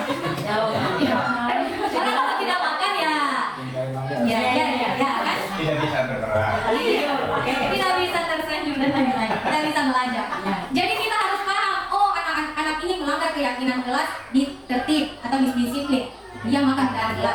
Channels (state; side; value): identical; both; correlation 1.00